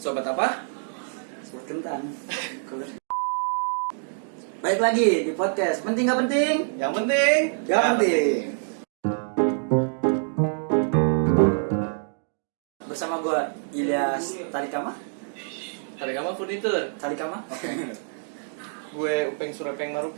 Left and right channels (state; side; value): silent; left; digital silence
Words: apa? Sobat kentang. Baik lagi di podcast Penting Gak Penting? Yang penting Gak penting. Bersama gue Ilyas Tarikama. Tarikama Furnitur. Tarikama? Gue Upeng Surepeng